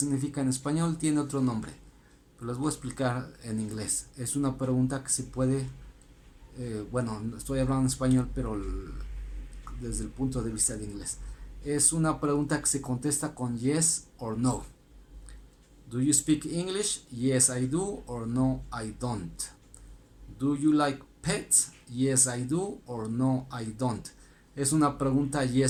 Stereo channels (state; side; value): identical; both; correlation 1.00